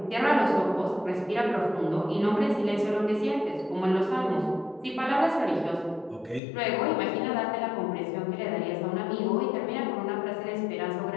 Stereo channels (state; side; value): drops out; right; at 6.4 s